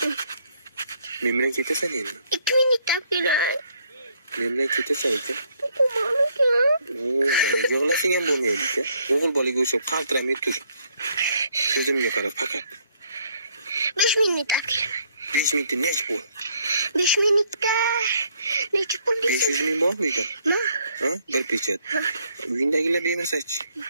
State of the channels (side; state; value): both; inverted; correlation -0.67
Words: Men bilan ketasan endi. 2 minutda kelay. Men bilan ketasan ekan. Yig'lasang ham bo'lmaydi-ku. O'g'il bolaga o'xshab qaltiramay tur. Ko'zimga qara faqat. 5 minutda kelaman. 5 minutda nech pul? 5 minutda necha pul deysiz? 500 ming bormi uyda? Ha? Bir pechat. Uyindagilar bermasa-chi?